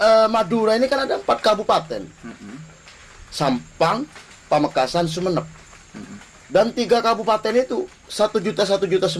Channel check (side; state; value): both; identical; correlation 1.00